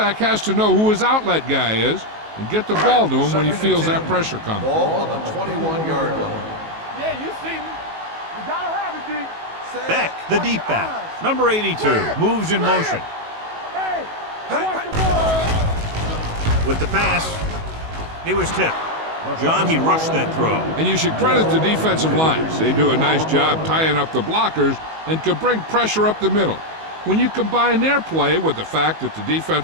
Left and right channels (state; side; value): late; left; 19 ms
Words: has to know who his outlet guy is and get the ball to him when he feels that pressure coming. Ball on the 21-yard line. Yeah, you see me. You gotta have it, D. Beck, the deep back. Number 82, moves in motion. Hey, watch the ball. With the pass, he was tipped. John, he rushed that throw. And you should credit the defensive lines. They do a nice job tying up the blockers and can bring pressure up the middle. When you combine their play with the fact that the